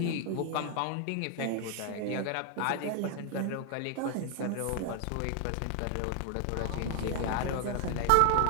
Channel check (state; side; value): different; both; correlation 0.00